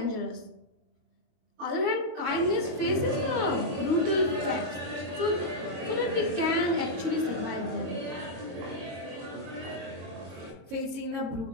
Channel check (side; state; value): left; late; 22 ms